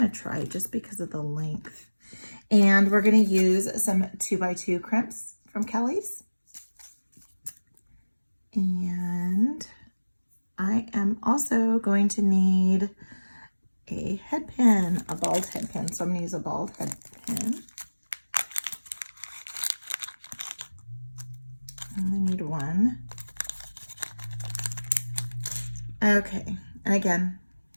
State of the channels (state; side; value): inverted; both; correlation -1.00